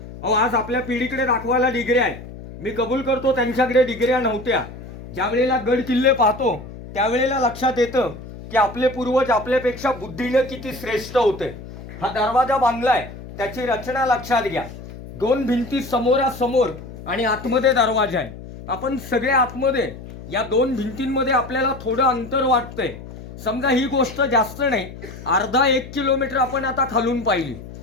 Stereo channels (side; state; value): left; noise; hum, 14 dB below the sound